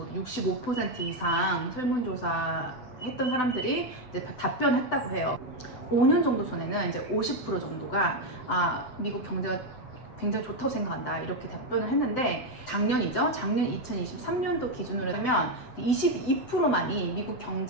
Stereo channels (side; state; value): right; late; 7.9 ms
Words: 65% 이상 설문조사 했던 사람들이 이제 답변했다고 해요. 5년 정도 전에는 이제 50% 정도가 미국 경제가 굉장히 좋다고 생각한다, 이렇게 답변을 했는데, 작년이죠. 작년 2023년도 기준으로 하면 22%만이 미국